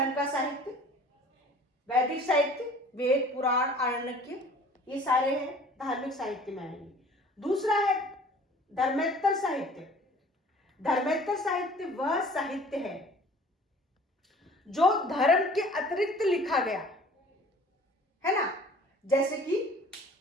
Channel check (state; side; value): normal; both; correlation 0.49